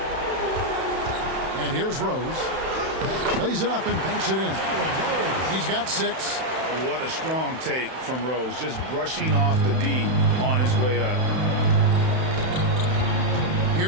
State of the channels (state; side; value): late; left; 31 ms